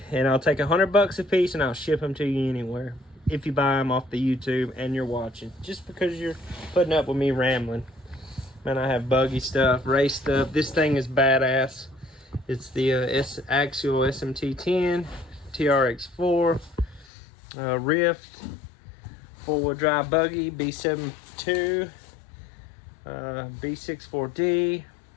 And I'll take $100 a piece and I'll ship them to you anywhere. If you buy them off the YouTube and you're watching. Just because you're putting up with me rambling. Man, I have buggy stuff, race stuff. This thing is badass. It's the Axial SMT10, TRX4, Rift, 4-wheel drive buggy, B72, B64D.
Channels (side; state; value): right; drops out; at 17.1 s